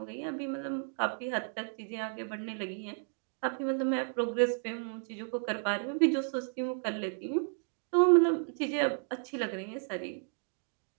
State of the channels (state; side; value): silent; left; 56 dB below the other